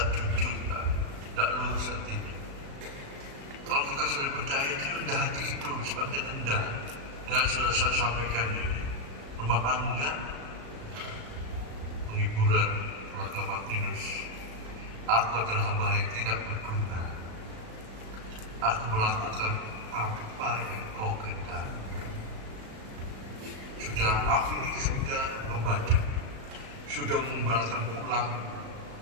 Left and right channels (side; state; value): left; late; 36 ms